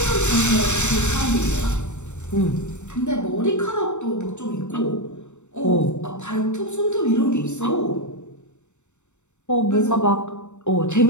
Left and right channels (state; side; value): late; right; 0.84 ms